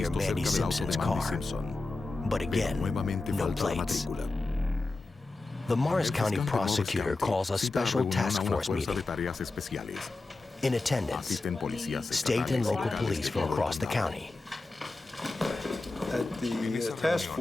Mandy Simpson's car. But again, no plates. The Morris County prosecutor calls a special task force meeting. In attendance, state and local police from across the county. At the task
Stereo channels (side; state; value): right; quieter; 3.3 dB